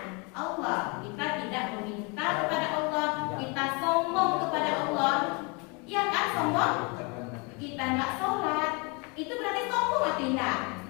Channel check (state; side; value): quieter; right; 31.2 dB